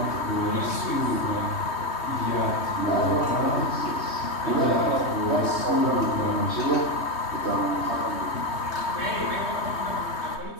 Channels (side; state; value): right; late; 3.2 ms